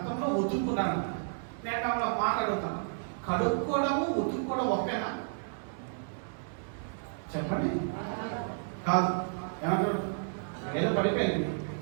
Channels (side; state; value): left; silent; digital silence